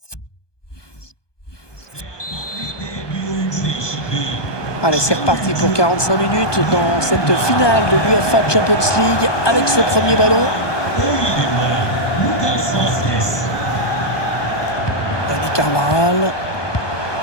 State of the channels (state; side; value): late; right; 1.2 ms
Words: Allez, c'est reparti pour 45 minutes dans cette finale de l'UEFA Champions League avec ce premier ballon. Dani Carvajal